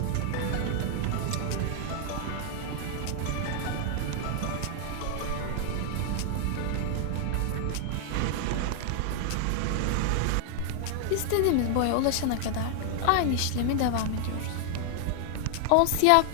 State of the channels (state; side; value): different; both; correlation 0.00